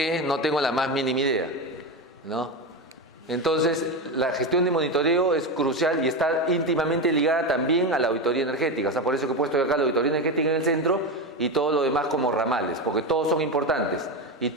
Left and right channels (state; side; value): normal; both; correlation 0.17